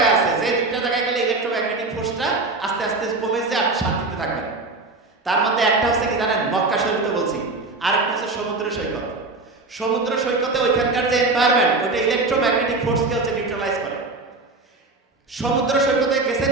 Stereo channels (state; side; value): quieter; left; 3.5 dB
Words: আছে, যে দুইটা জায়গায় গেলে ইলেকট্রোম্যাগনেটিক ফোর্সটা আস্তে আস্তে কমে যায়, আপনি শান্তিতে থাকবেন। তার মধ্যে একটা হচ্ছে কি জানেন? মক্কা শরীফে বলছি। আর একটা হচ্ছে সমুদ্র সৈকত। সমুদ্র সৈকতে ওইখানকার যে এনভায়রনমেন্ট, ওইটা ইলেকট্রোম্যাগনেটিক ফোর্সকে হচ্ছে নিউট্রালাইজ করে। সমুদ্র সৈকতে গেছেন